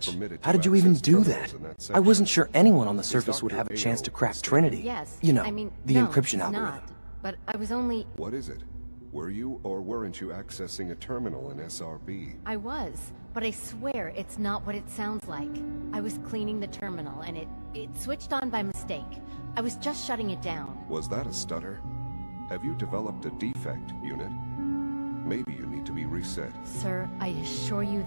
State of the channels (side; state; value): both; inverted; correlation -1.00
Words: permitted to How did you even access do terminals that? in that I section. wasn't sure anyone on the Is surface would Dr. have a chance Ayo to crack mistaken? Trinity. Yes. You know, I mean, the no, encryption it's algorithm. not. But I was only... What is it? Were you or weren't you accessing a terminal in SRB? I was. But I swear it's not what it sounds like. I was cleaning the terminal, and it switched on by mistake. I was just shutting it down. Was that a stutter? Have you developed a defect, unit? Maybe you need to be reset. Sir, I assure you